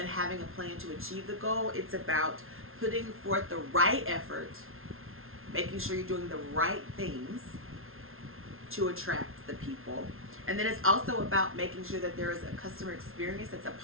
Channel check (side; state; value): left; late; 0.61 ms